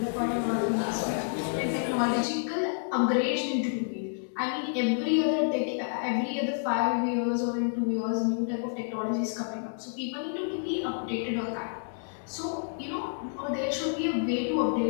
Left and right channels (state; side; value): silent; right; digital silence